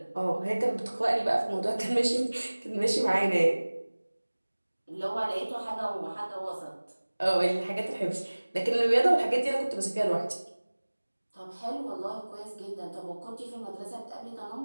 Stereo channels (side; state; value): both; inverted; correlation -1.00